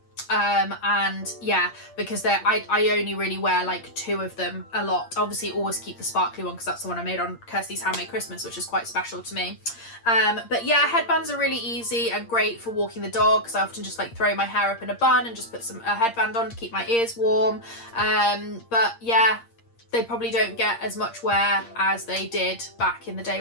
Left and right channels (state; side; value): late; right; 8.6 ms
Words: And yeah, because I only really wear like 2 of them a lot. Obviously always keep the sparkly one because that's the one I made on Kirsty's Handmade Christmas, which is quite special to me. But yeah, headbands are really easy and great for walking the dog, because I often just like throw my hair up in a bun and just put a headband on to keep my ears warm. But yeah, they probably don't get as much wear as they did back in the day